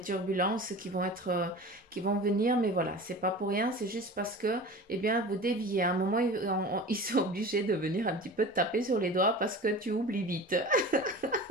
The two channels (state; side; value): normal; both; correlation 0.35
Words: turbulences qui vont venir, mais voilà, c'est pas pour rien, c'est juste parce que, eh bien, vous déviez. À un moment, ils sont obligés de venir un petit peu te taper sur les doigts parce que tu oublies vite.